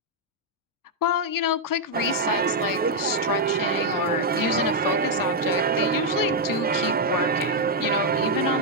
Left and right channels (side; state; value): both; normal; correlation -0.02